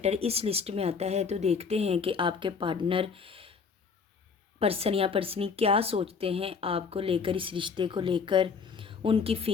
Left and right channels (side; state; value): right; quieter; 5.6 dB